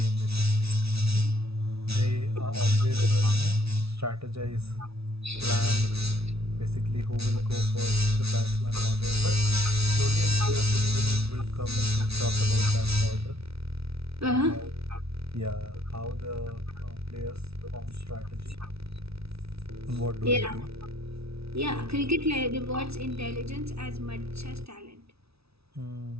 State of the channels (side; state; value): left; late; 0.78 ms